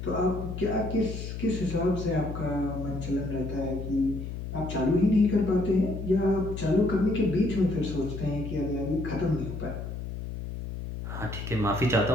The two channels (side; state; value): left; noise; hum, 7 dB below the sound